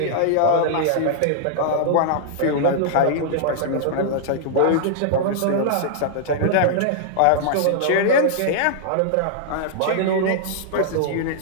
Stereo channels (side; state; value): both; different; correlation -0.01